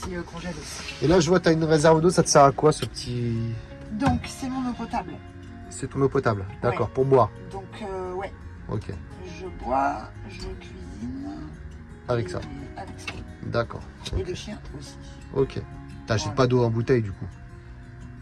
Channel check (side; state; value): both; identical; correlation 1.00